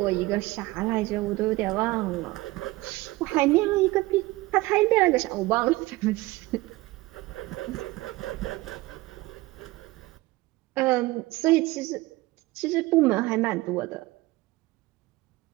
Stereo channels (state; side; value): quieter; left; 20.1 dB